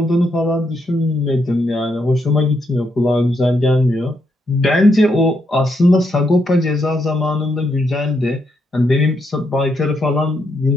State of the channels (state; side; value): normal; both; correlation 0.79